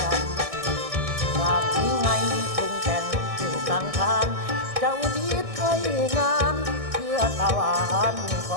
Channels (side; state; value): left; late; 1.6 ms